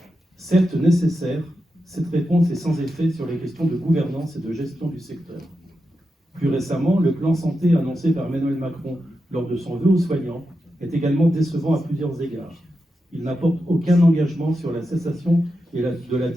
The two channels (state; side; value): normal; both; correlation 0.88